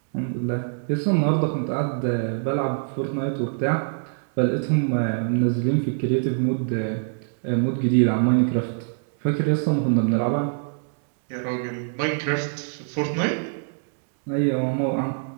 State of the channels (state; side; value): silent; left; 63 dB below the other